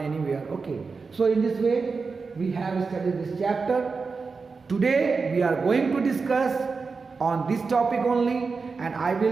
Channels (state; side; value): quieter; left; 4.6 dB